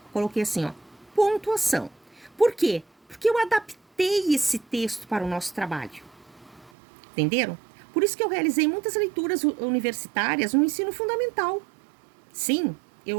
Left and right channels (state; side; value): drops out; left; at 6.7 s